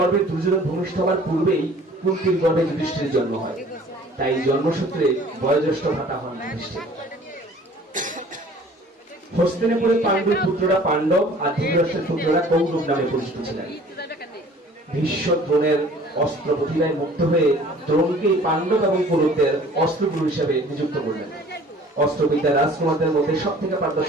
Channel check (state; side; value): normal; both; correlation 0.50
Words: দুর্যোধন ভূমিষ্ঠ হওয়ার পূর্বেই কুন্তির গর্ভে যুধিষ্ঠিরের জন্ম হয়। তাই জন্মসূত্রে বয়োজ্যেষ্ঠ ভ্রাতা হন যুধিষ্ঠির। হস্তিনাপুরে পাণ্ডুর পুত্ররা পাণ্ডব আর ধৃতরাষ্ট্রের পুত্ররা কৌরব নামে পরিচিত ছিলেন। ভীষ্ম দ্রোণের অস্ত্র প্রতিভায় মুক্ত হয়ে দ্রোণকে পাণ্ডব এবং কৌরবদের অস্ত্রগুরু হিসেবে নিযুক্ত করলেন। অস্ত্রবিদ্যা রাজকুমারদের মধ্যে সব থেকে